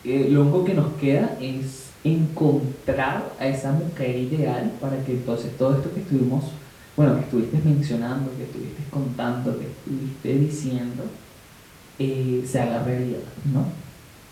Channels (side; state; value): both; identical; correlation 1.00